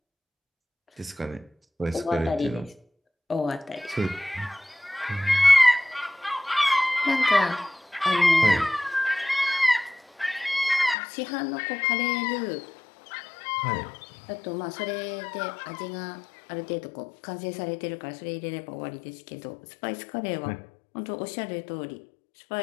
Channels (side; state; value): right; drops out; at 11.0 s